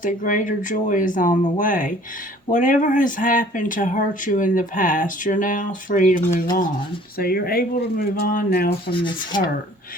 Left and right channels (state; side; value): normal; both; correlation 0.52